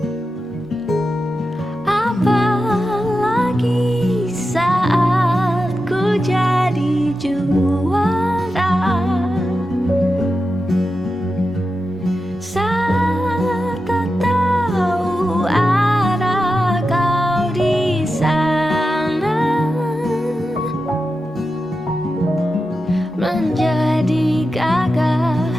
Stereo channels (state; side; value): normal; both; correlation 0.91